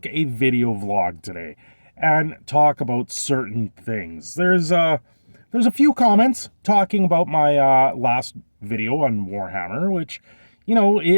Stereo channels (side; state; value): both; inverted; correlation -1.00